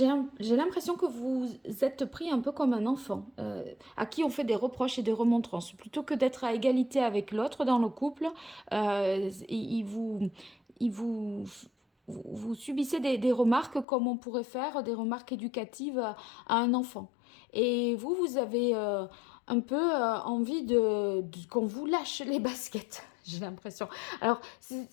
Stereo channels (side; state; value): right; drops out; at 13.9 s